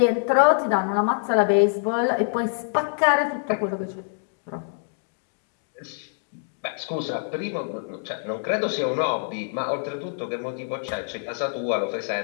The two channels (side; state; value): right; silent; digital silence